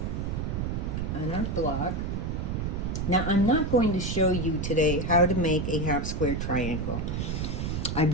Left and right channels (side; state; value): right; noise; rumble, 2 dB below the sound